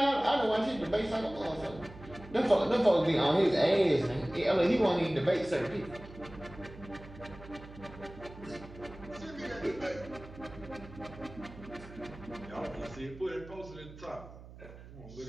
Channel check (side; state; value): right; noise; hum, 17 dB below the sound